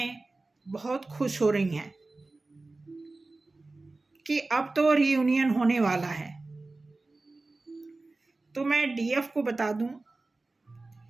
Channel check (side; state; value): left; quieter; 3.3 dB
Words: बहुत खुश हो रही हैं कि अब तो रियूनियन होने वाला है। तो मैं डीएफ को बता दूं